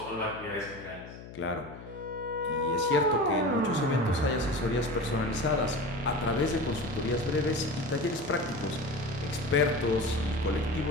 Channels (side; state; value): left; noise; hum, 14 dB below the sound